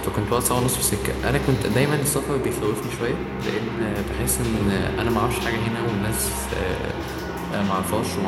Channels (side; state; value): both; identical; correlation 1.00